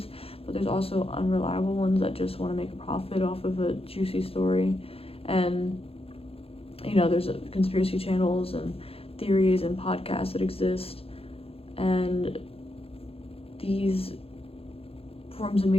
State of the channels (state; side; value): late; right; 0.28 ms